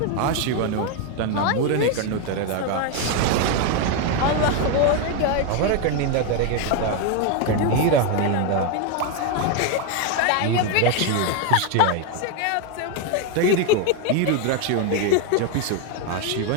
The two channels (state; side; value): different; both; correlation 0.01